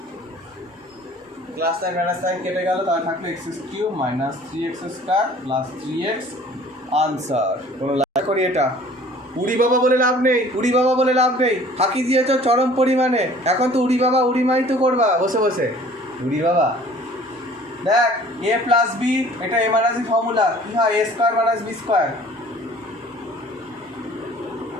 +9 কেটে গেল, তাহলে থাকলো x³ -3x² + 3x আনসার। কোনো লাইক করি এটা উড়ি বাবা বলে লাভ নেই, ফাঁকি দিয়েছ চরম পরিমাণে। এখন তো উড়ি বাবা উড়ি মাই তো করবা বসে বসে, উড়ি বাবা। দেখ a + b, এটা a - b ফর্মুলা, কি হয়? a² - b²।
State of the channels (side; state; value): both; normal; correlation 0.51